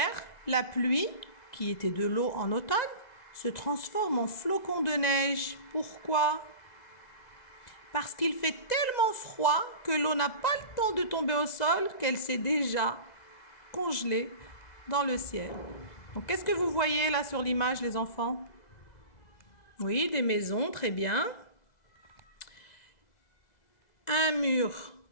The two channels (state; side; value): late; right; 2.0 ms